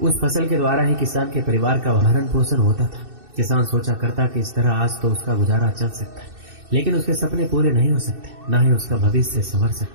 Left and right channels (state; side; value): late; left; 2.6 ms